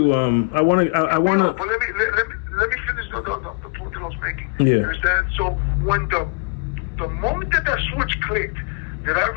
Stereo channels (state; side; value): quieter; right; 36.8 dB